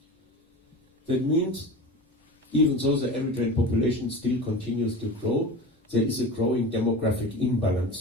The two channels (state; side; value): normal; both; correlation 0.32